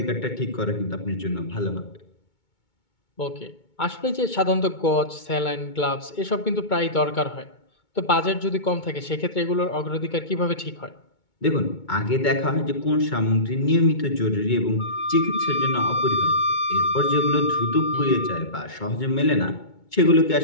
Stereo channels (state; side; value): late; right; 2.2 ms